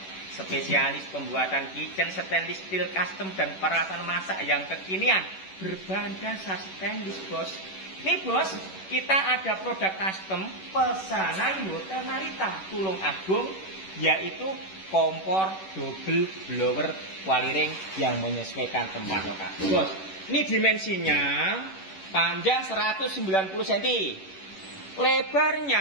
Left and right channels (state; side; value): late; right; 11 ms